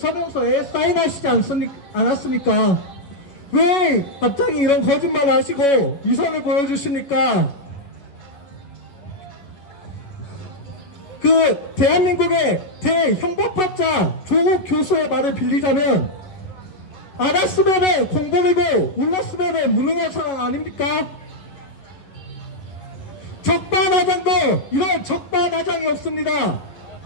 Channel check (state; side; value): late; right; 11 ms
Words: 사인하시지 않았습니까? 왜 갑자기 이런 거짓말 하시고 위선을 보여주십니까? 그 대한민국의 대형법학자 조국 교수의 말을 빌리자면 알았으면은 공범이고 몰랐으면은 무능한 사람 아닙니까? 적반하장도 이런 적반하장이 없습니다.